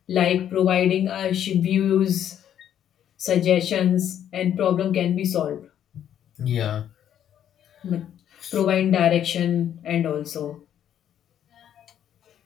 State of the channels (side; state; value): right; quieter; 10.1 dB